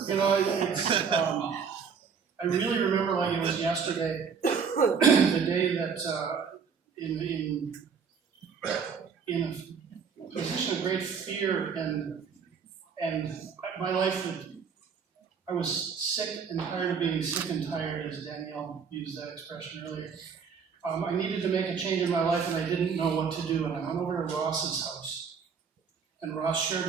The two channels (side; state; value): left; quieter; 6.3 dB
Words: I really remember like it was yesterday, the day that in a position of great fear and my life, I was sick and tired of being sick and tired, as Danielle used that expression earlier. I needed to make a change in my life and I didn't know what to do, and I went over to Ross's house. And Ross